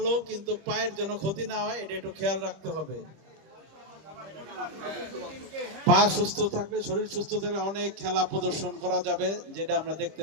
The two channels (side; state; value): left; late; 25 ms